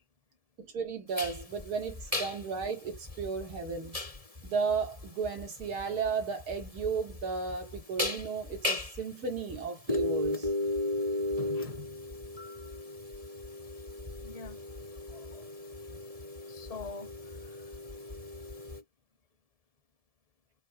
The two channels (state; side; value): late; left; 1.7 ms